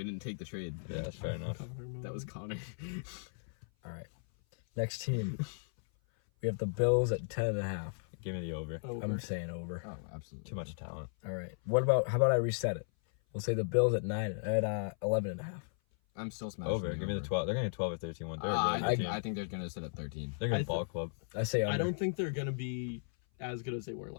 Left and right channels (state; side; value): silent; right; 54 dB below the other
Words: didn't take the trade. Yeah, that's fair enough. That was Connor. All right. Next team. We have the Bills at 10.5. Give me the over. I'm saying over. Oh, absolutely. Too much talent. All right. How about I reset it? We'll say the Bills at 11.5. I'm still smashing. Over. Give me the 12. They're going to 12 or 13 one. They're a really good team. I think they're going to sit at 13. They're going to ball club. I say under. I don't think they're gonna be as good as they were